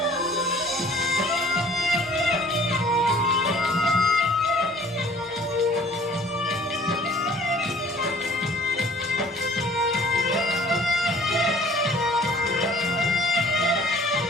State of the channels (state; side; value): normal; both; correlation 0.52